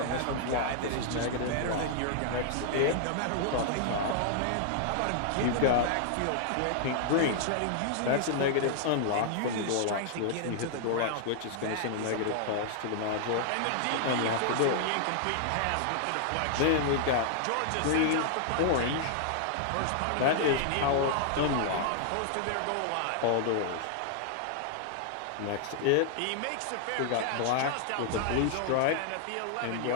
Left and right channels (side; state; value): both; different; correlation -0.01